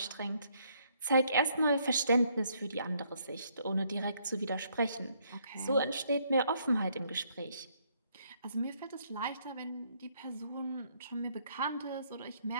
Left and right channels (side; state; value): both; inverted; correlation -0.69